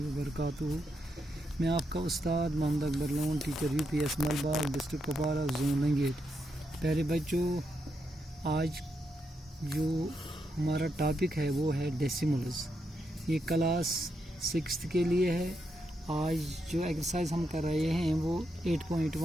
वबरकातुहू। मैं आपका उस्ताद Mohammad Akbar Lone, teacher UPS Malbagh, district Kupwara, zone Langate. प्यारे बच्चों, आज जो हमारा टॉपिक है वो है डेसिमल्स। ये क्लास 6 के लिए है। आज जो एक्सरसाइज हम कर रहे हैं वो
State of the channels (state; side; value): normal; both; correlation 0.82